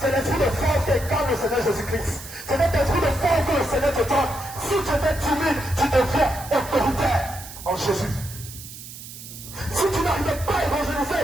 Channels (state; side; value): noise; right; hiss, 14 dB below the sound